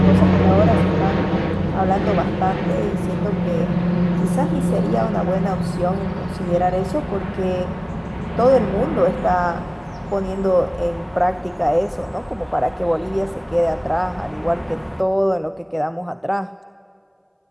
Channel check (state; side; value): identical; both; correlation 1.00